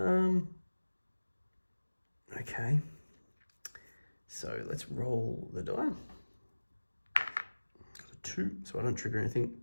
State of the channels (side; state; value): both; inverted; correlation -1.00